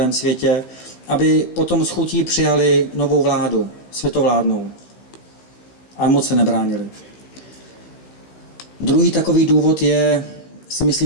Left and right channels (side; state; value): right; late; 16 ms